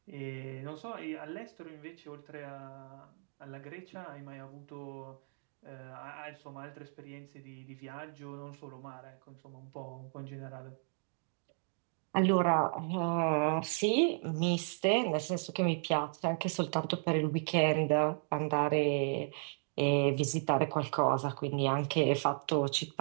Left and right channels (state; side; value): silent; left; 54 dB below the other